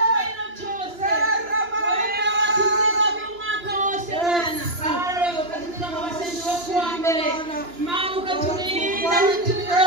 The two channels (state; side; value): late; left; 2.9 ms